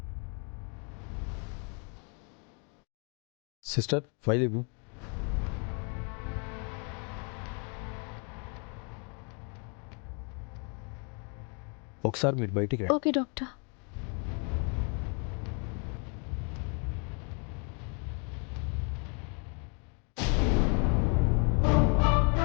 సిస్టర్, ఫైల్ ఇవ్వు. ఒకసారి మీరు బయటికి రండి. Okay doctor.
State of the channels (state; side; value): quieter; right; 37.0 dB